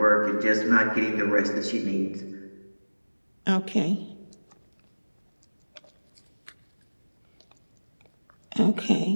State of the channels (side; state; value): both; inverted; correlation -1.00